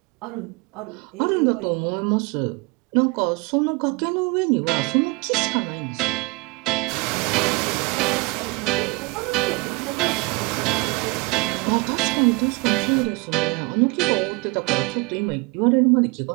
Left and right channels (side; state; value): left; quieter; 27.0 dB